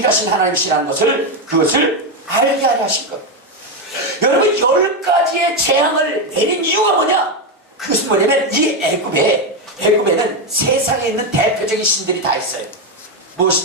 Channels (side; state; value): both; normal; correlation 0.08